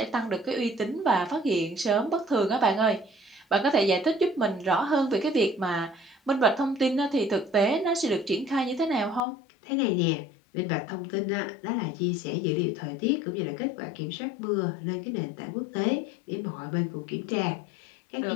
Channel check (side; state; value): right; drops out; at 9.2 s